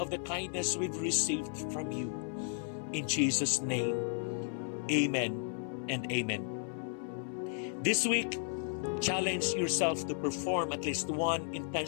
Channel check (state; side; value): silent; right; 55 dB below the other